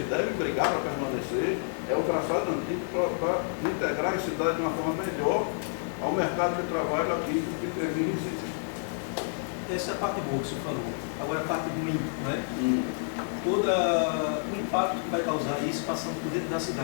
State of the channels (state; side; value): silent; right; digital silence